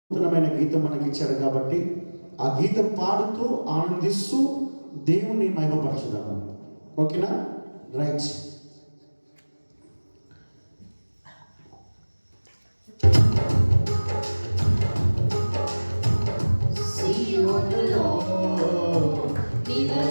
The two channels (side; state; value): both; inverted; correlation -1.00